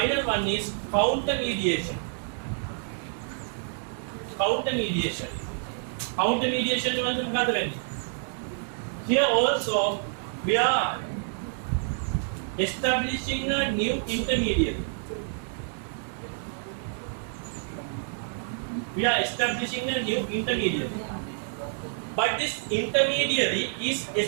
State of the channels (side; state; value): left; silent; 59 dB below the other